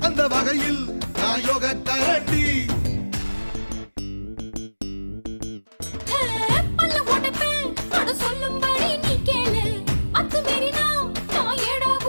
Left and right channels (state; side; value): inverted; both; correlation -1.00